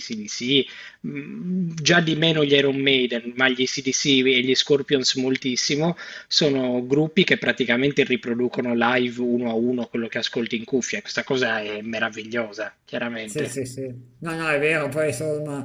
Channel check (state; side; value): identical; both; correlation 1.00